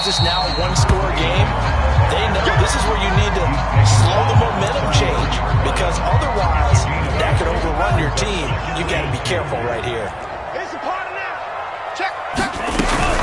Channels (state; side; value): identical; both; correlation 1.00